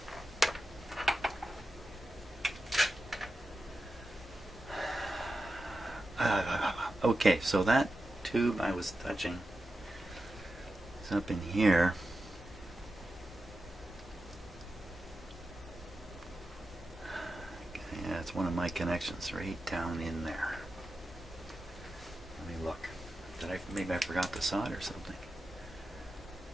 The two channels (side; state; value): both; normal; correlation 0.91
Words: Okay, so that tube I was touching is up in here. Okay, yeah, it's one of my connections right down in there. Let me look. Maybe I forgot to solder something.